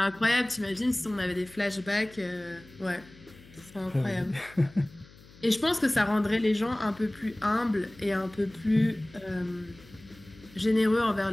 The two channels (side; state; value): left; noise; hum, 23 dB below the sound